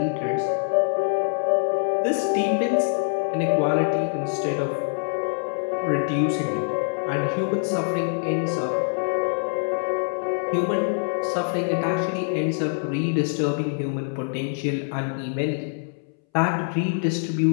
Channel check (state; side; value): silent; right; 62 dB below the other